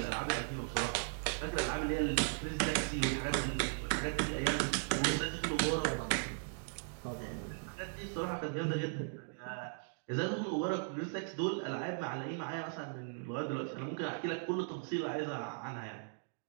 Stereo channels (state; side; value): silent; left; digital silence